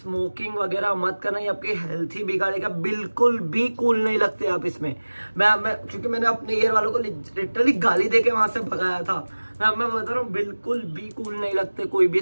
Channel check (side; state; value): both; inverted; correlation -1.00